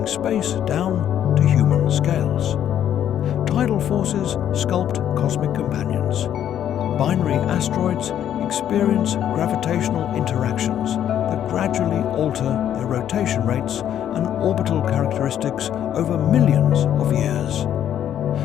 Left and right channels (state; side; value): quieter; right; 10.3 dB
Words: space down to human scales. Tidal forces sculpt cosmic companions. Binary asteroids experience gravitational interactions that gradually alter their rotation rates and orbital characteristics over millions of years.